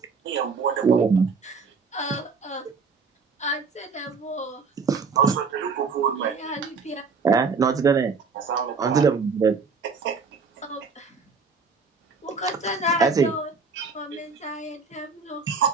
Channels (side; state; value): left; quieter; 4.8 dB